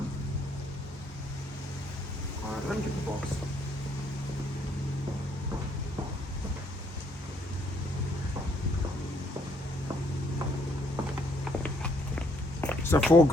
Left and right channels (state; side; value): normal; both; correlation 0.69